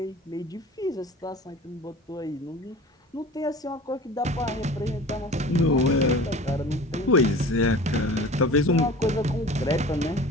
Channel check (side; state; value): both; normal; correlation 0.40